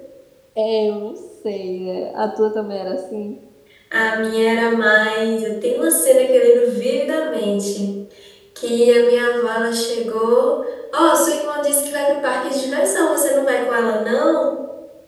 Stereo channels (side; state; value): both; identical; correlation 1.00